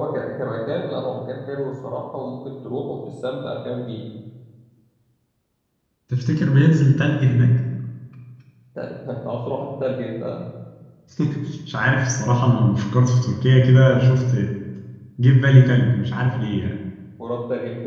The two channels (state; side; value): identical; both; correlation 1.00